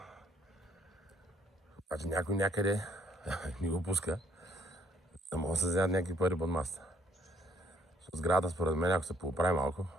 Обаче някой някъде ни го пуска. Да могат да се вземат някакви пари под масата. Сградата, според мен, ако се поправи малко,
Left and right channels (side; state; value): both; normal; correlation 0.65